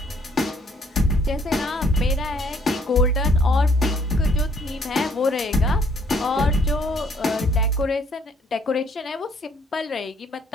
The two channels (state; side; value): normal; both; correlation 0.65